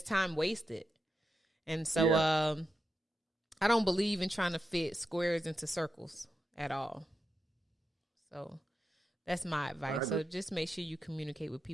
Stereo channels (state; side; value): normal; both; correlation 0.88